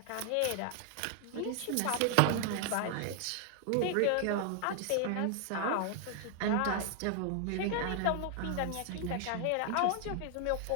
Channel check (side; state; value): both; different; correlation 0.00